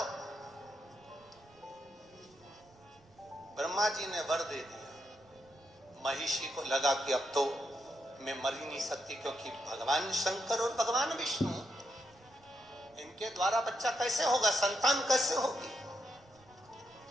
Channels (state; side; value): noise; right; rumble, 29 dB below the sound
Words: ब्रह्मा जी ने वर दे दिया, महिषी को लगा कि अब तो मैं मर ही नहीं सकती, क्योंकि भगवान शंकर और भगवान विष्णु, इनके द्वारा बच्चा कैसे होगा, संतान कैसे होगी।